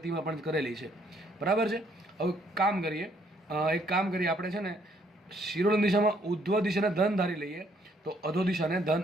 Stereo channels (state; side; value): normal; both; correlation 0.67